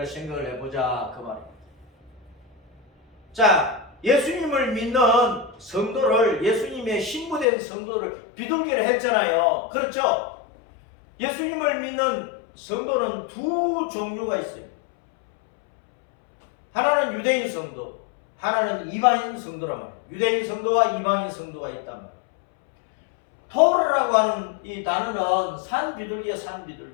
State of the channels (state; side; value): drops out; right; at 7.5 s